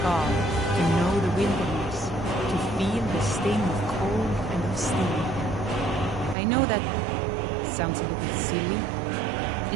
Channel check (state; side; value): drops out; left; at 6.4 s